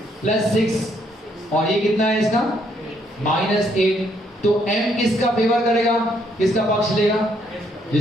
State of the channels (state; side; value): normal; both; correlation 0.71